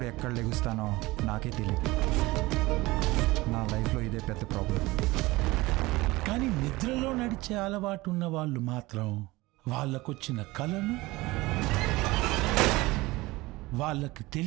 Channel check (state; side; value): quieter; left; 20.7 dB